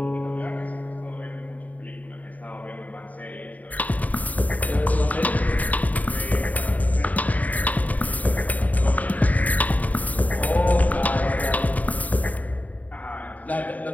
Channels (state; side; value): late; right; 0.074 ms